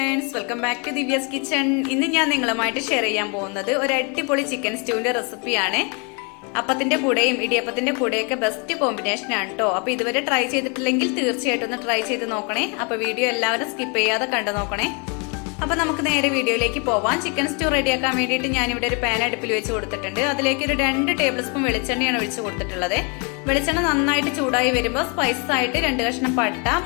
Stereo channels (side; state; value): right; quieter; 34.0 dB